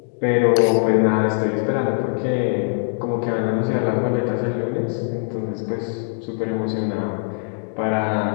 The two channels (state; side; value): silent; right; digital silence